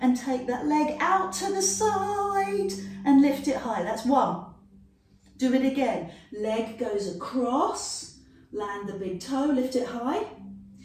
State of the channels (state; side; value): identical; both; correlation 1.00